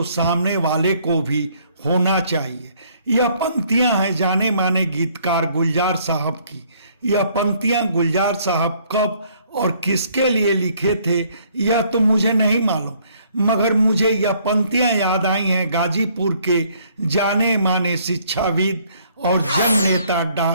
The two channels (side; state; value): both; inverted; correlation -0.64